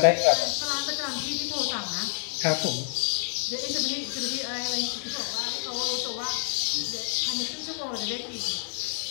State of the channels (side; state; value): right; silent; digital silence